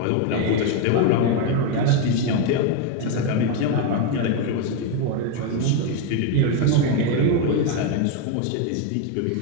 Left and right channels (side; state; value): both; different; correlation 0.02